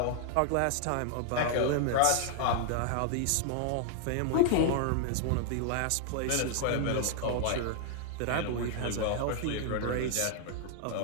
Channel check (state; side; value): different; both; correlation 0.00